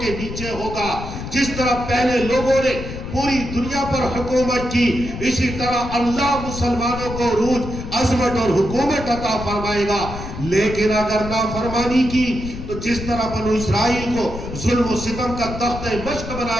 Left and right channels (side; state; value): left; noise; rumble, 8 dB below the sound